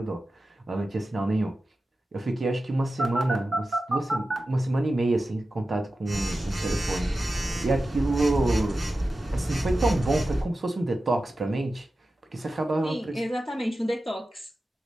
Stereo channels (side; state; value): both; normal; correlation 0.94